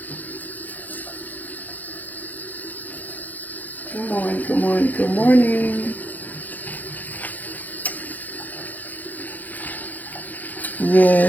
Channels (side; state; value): right; late; 0.085 ms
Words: Good morning, good morning, good morning.